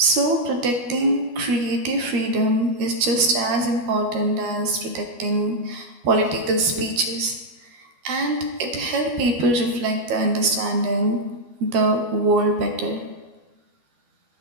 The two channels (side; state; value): left; late; 12 ms